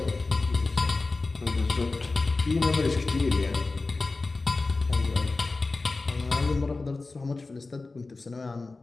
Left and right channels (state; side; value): quieter; right; 3.6 dB